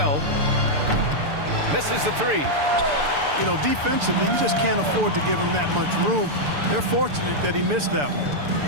Misses the three. You know, defensively, you just can't afford to give him that much room. They're fortunate that he missed that one.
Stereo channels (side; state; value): left; late; 6.9 ms